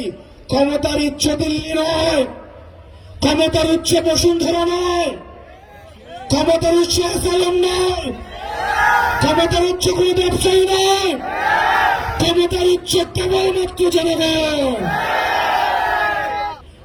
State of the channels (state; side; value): identical; both; correlation 1.00